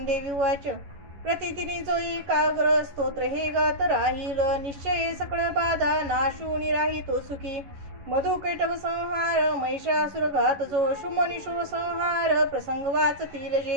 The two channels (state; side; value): late; left; 11 ms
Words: उवाच। प्रतिदिनी जो एकाग्र स्तोत्र हे गात राहील, निश्चय सकळ बाधा नाशूनी राहितो सुखी। मधुकैटभ संहार महिषासुर घात जो, शुंभनिशूर संहार प्रसंग वाचतील